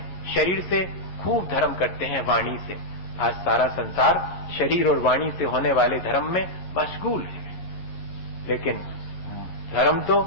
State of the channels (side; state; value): right; late; 11 ms